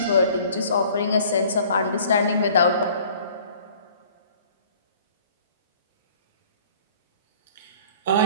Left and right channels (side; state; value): both; inverted; correlation -0.53